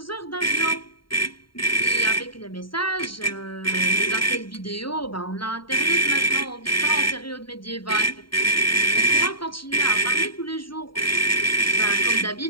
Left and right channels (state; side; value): late; right; 0.73 ms